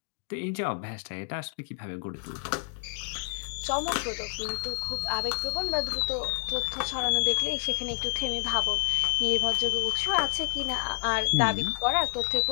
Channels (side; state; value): right; silent; digital silence